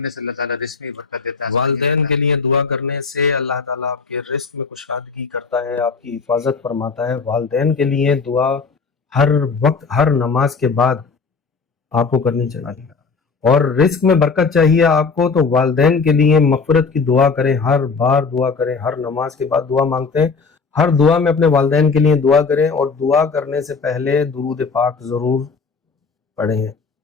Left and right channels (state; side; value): quieter; right; 4.9 dB